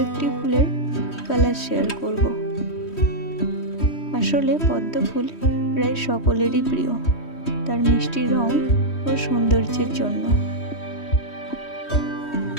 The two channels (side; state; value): right; late; 3.1 ms